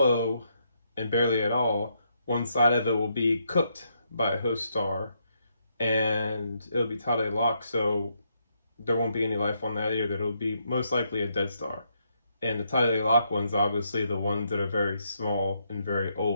and barely at all, one side of it will be cooked by a host star and it'll be tidally locked, so there won't be any life on that either. It'll be most likely a dead star. And the tidally locked ones, obviously, the ones that are very small and very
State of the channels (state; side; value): inverted; both; correlation -0.77